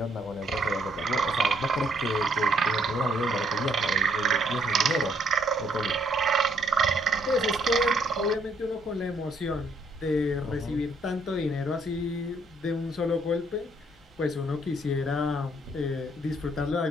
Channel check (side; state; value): both; normal; correlation 0.68